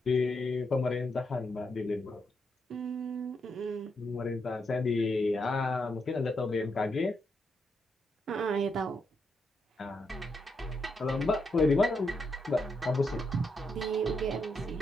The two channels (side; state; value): both; normal; correlation 0.81